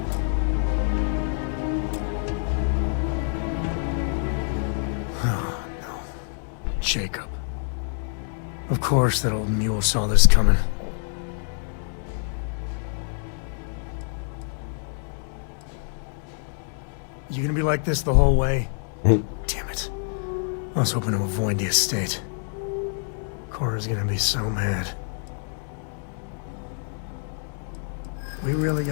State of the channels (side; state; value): right; silent; 59 dB below the other